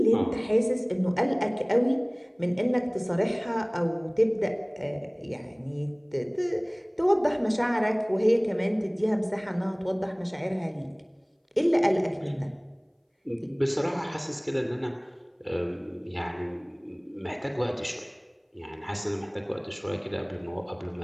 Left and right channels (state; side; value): identical; both; correlation 1.00